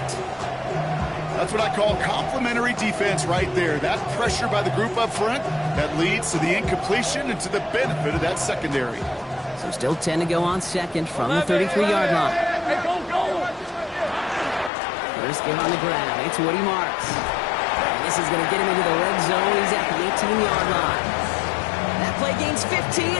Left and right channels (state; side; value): drops out; right; at 14.7 s